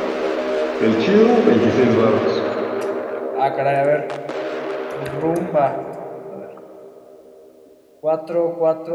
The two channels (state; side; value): identical; both; correlation 1.00